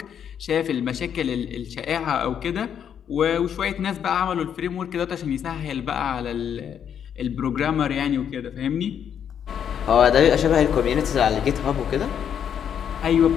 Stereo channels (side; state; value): right; quieter; 8.5 dB